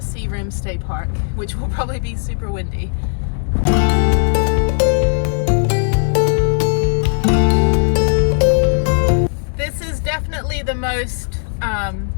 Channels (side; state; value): right; silent; 68 dB below the other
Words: Searim State Park, which will probably be super windy. This is definitely the most